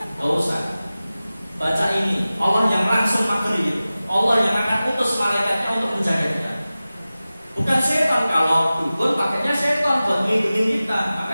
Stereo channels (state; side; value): inverted; both; correlation -0.96